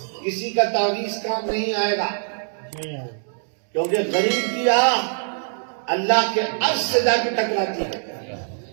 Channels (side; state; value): left; silent; 64 dB below the other